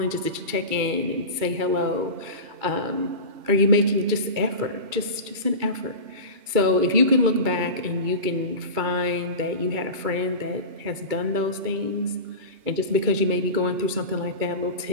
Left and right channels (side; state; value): left; late; 2.3 ms